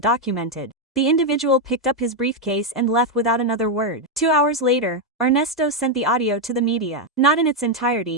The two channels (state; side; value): normal; both; correlation 0.02